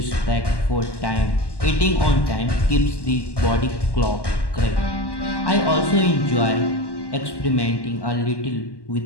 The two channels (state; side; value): late; right; 1.1 ms